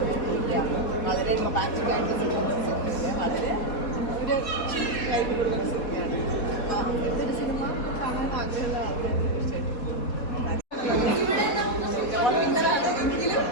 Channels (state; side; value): late; right; 4.2 ms